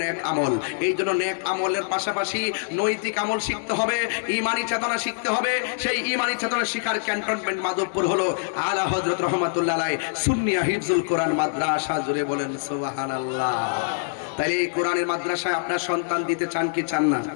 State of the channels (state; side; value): silent; right; digital silence